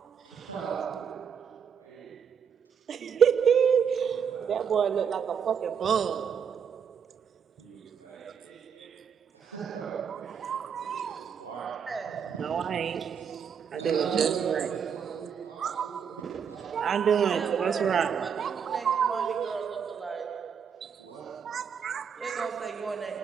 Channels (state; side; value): quieter; left; 7.3 dB